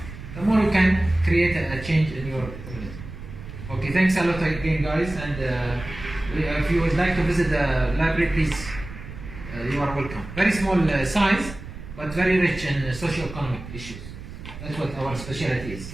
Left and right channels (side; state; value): right; noise; rumble, 12 dB below the sound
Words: the more you can create a change in your community. Okay, thanks a lot again, guys. And if you would like to visit the library, please, you are welcome. Very small size, but very rich in socio-economic issues. That's what our specialty is.